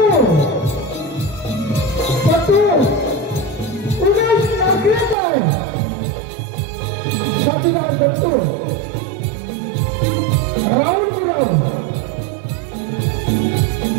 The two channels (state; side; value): drops out; left; at 5.2 s